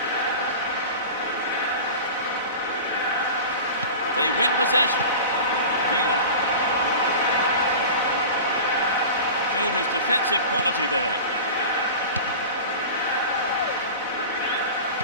They win possession. Villa. Showed his defensive quality there.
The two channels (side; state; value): both; inverted; correlation -0.33